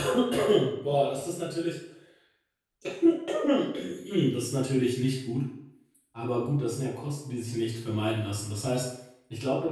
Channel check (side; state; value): both; identical; correlation 1.00